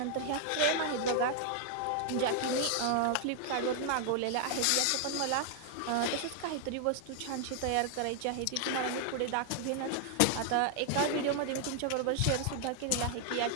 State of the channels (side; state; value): both; different; correlation 0.00